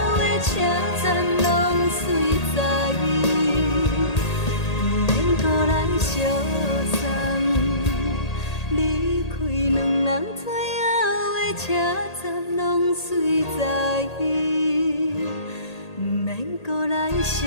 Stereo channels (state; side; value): late; right; 1.8 ms